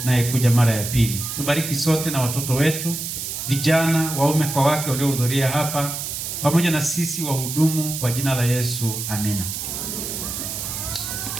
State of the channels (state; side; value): noise; right; hiss, 5 dB below the sound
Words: anayekuja mara ya pili. Tubariki sote na watoto wetu, vijana, waume kwa wake waliohudhuria hapa, pamoja na sisi wahudumu, kwa jina la Yesu, amina.